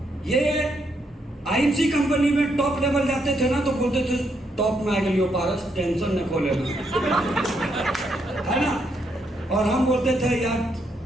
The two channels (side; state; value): both; normal; correlation 0.77